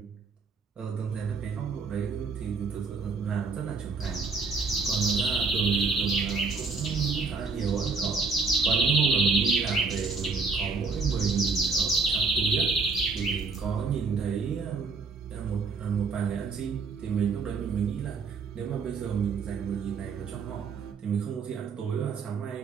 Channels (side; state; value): left; quieter; 4.6 dB